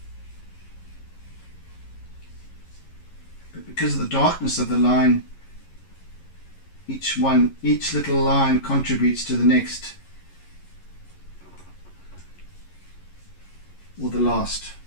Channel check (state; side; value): late; right; 11 ms